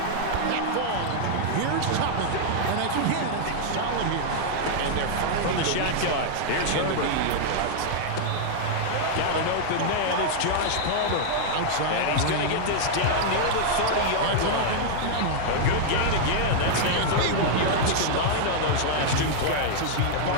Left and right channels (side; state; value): both; different; correlation -0.01